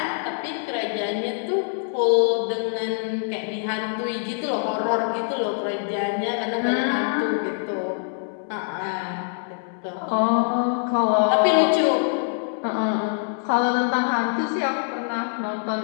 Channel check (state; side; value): silent; right; 62 dB below the other